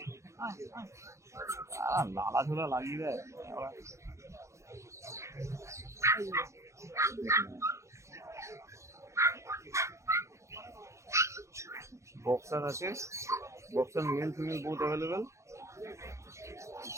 লালা ঝোলা লাগিয়ে দেয়। বক্সার আছে, boxer male female both available.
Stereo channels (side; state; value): left; late; 0.14 ms